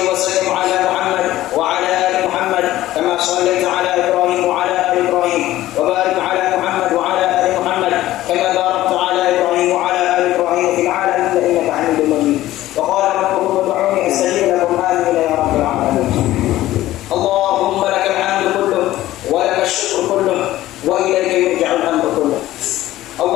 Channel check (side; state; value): right; quieter; 15.2 dB